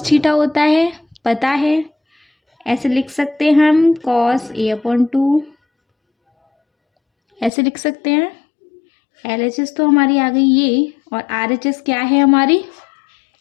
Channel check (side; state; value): right; drops out; at 7.5 s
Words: theta होता है, पता है। ऐसे लिख सकते हैं हम, कॉस A अपॉन 2 ऐसे लिख सकते हैं। LHS तो हमारी आ गई ये, और RHS क्या है हमारी?